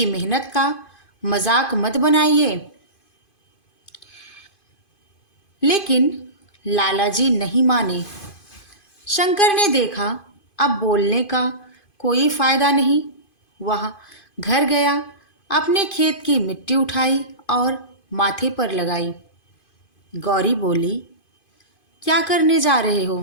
मेहनत का मजाक मत बनाइए। लेकिन लाला जी नहीं माने। शंकर ने देखा अब बोलने का कोई फायदा नहीं। वह घर गया, अपने खेत की मिट्टी उठाई और माथे पर लगाई। गौरी बोली, क्या करने जा रहे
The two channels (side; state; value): right; late; 2.5 ms